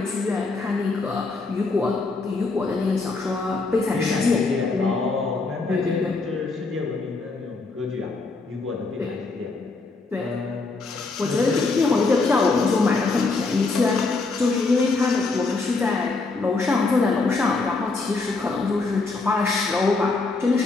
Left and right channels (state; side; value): quieter; right; 3.8 dB